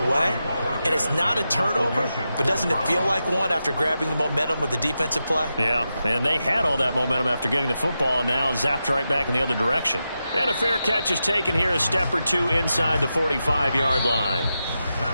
And it's not a turnover, but doesn't it feel like one after grabbing the momentum with the defensive play? Yeah, and they had all that momentum after getting the football and now zapped right back in the other direction. And a fair catch is taken here a step or 2 inside the 45-yard line.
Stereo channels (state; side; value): inverted; both; correlation -0.89